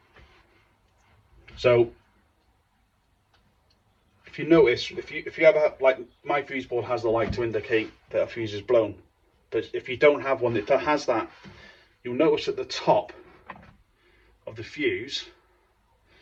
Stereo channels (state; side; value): identical; both; correlation 1.00